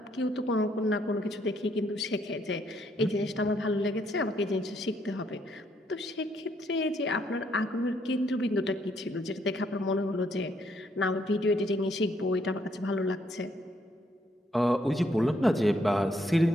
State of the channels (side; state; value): both; normal; correlation 0.72